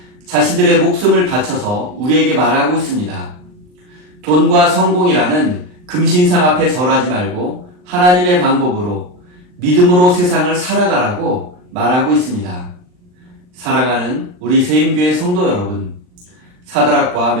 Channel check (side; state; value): left; late; 39 ms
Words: 자신들의 목숨을 바쳐서 우리에게 말하고 있습니다. 돈과 성공이라는 금신상 앞에 절하지 말고 하나님의 방법으로 믿음으로 세상을 살아가라고 말하고 있습니다. 사랑하는 우리 세임교회 성도 여러분, 사드락과